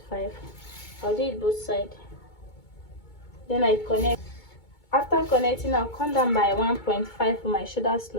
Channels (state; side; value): late; right; 2.2 ms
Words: I'll do it both sides. Then I connect. After connecting, I'll come down by 1.5 for my shoulder